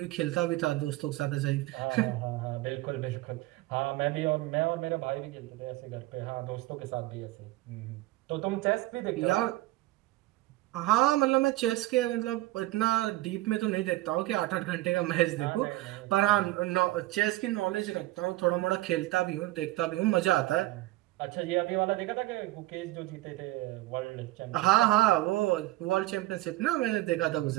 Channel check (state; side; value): quieter; left; 17.9 dB